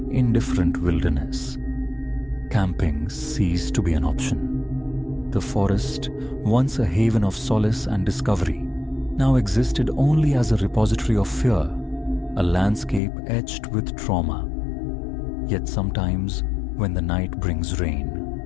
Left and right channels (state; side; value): drops out; right; at 13.0 s